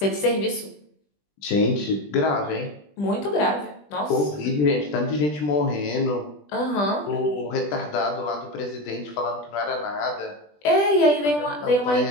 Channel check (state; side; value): late; right; 20 ms